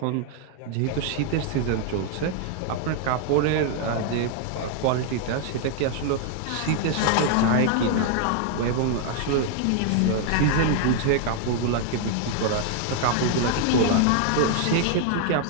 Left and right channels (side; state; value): both; different; correlation 0.00